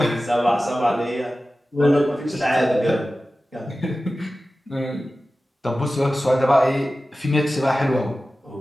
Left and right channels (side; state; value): both; normal; correlation 0.95